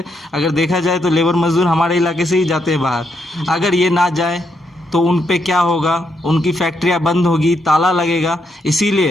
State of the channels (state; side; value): normal; both; correlation 0.78